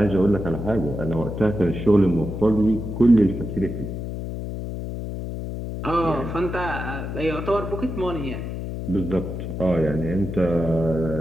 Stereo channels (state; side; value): noise; left; hum, 6 dB below the sound